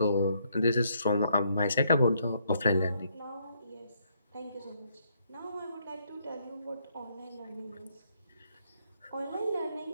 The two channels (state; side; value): inverted; both; correlation -0.72